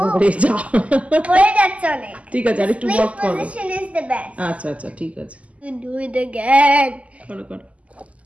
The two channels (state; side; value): late; left; 0.066 ms